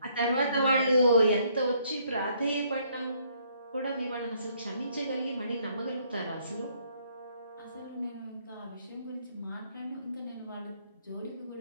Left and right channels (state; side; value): inverted; both; correlation -0.67